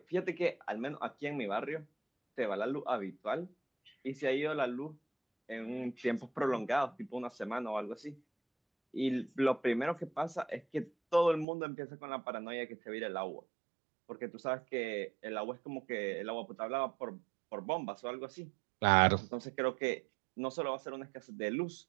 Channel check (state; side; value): drops out; left; at 11.5 s